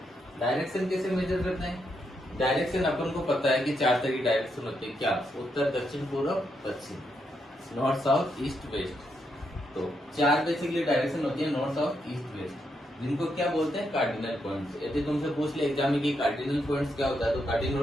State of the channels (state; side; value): normal; both; correlation 0.80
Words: डायरेक्शन कैसे मेजर करते हैं, डायरेक्शन अपन को पता है कि 4 तरह की डायरेक्शन होती है, क्या, उत्तर, दक्षिण, पूर्व, पश्चिम, नॉर्थ, साउथ, ईस्ट, वेस्ट। तो 4 बेसिकली डायरेक्शन होती है, नॉर्थ, साउथ, ईस्ट, वेस्ट, जिनको क्या बोलते हैं, कार्डिनल पॉइंट्स। यदि तुमसे पूछ ले एग्जाम में कि कार्डिनल पॉइंट्स क्या होता है, तो